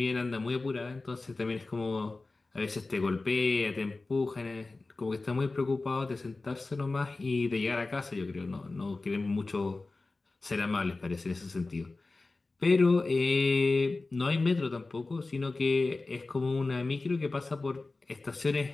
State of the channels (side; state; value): right; quieter; 3.4 dB